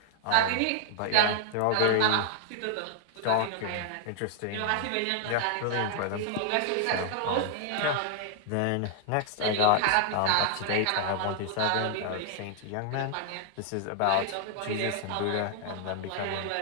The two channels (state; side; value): different; both; correlation 0.00